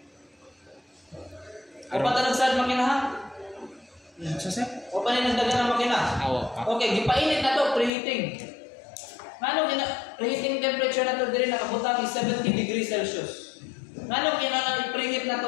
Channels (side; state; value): right; drops out; at 7.9 s